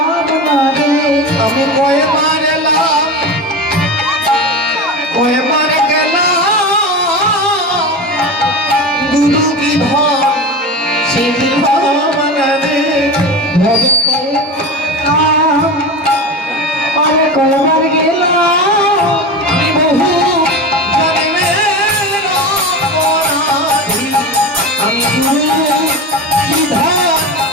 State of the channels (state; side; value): normal; both; correlation 0.25